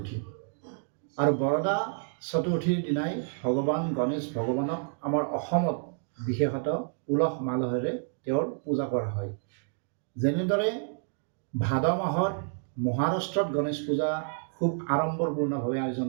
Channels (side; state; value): left; silent; digital silence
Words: আৰু বৰদা চতুৰ্থীৰ দিনাই ভগৱান গণেশ ভগৱানক আমাৰ অসমত বিশেষত উলহ মালহেৰে তেওঁৰ পূজা কৰা হয়। যেনেদৰে ভাদ মাহত মহাৰাষ্ট্ৰত গণেশ পূজা খুব আড়ম্বৰপূৰ্ণভাৱে আয়োজন